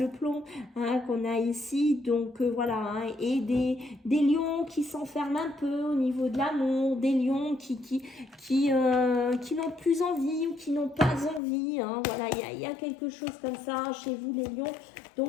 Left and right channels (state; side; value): drops out; right; at 11.4 s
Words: plomb qu'on a ici. Donc voilà, et des lions qui s'enferment un peu au niveau de l'amour, des lions qui n'ont plus envie ou qui n'ont pas envie. Voilà, il y a quelque chose comme ça chez vous les lions.